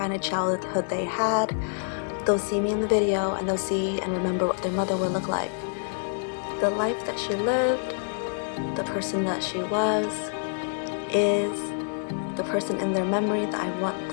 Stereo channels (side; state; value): right; silent; 60 dB below the other